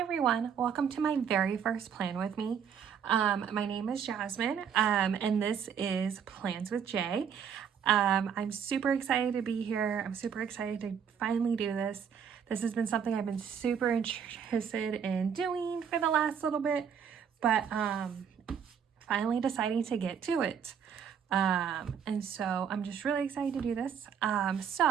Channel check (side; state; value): left; quieter; 7.6 dB